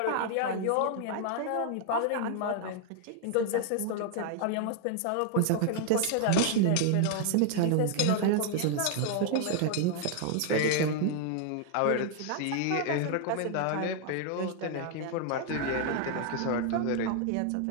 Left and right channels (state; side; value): different; both; correlation 0.00